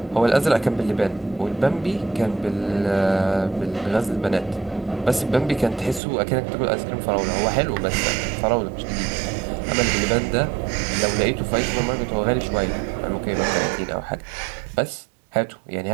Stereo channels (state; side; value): drops out; left; at 6.0 s